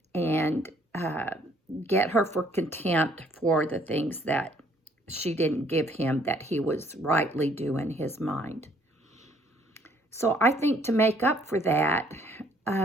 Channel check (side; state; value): both; normal; correlation 0.63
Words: and get her for contempt for the things that she didn't give him that he was rightly due in his mind. So I think to make up for that,